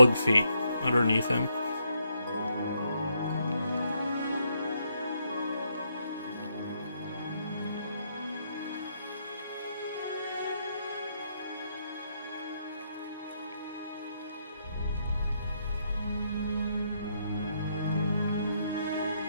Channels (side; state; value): both; inverted; correlation -0.76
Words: feet underneath him.